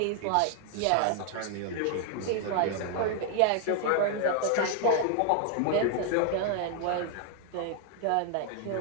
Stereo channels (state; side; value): different; both; correlation 0.00